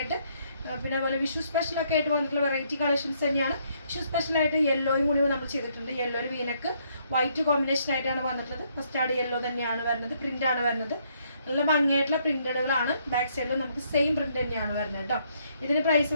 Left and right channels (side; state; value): both; inverted; correlation -0.70